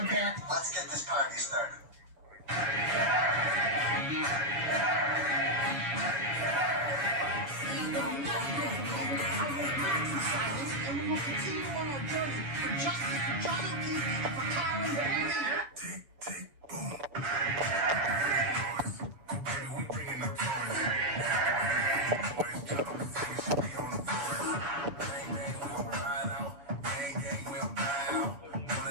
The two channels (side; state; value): left; late; 6.8 ms